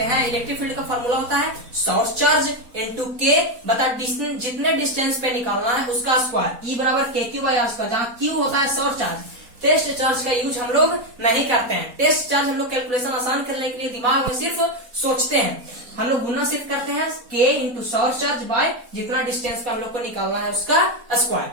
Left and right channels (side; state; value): left; late; 4.1 ms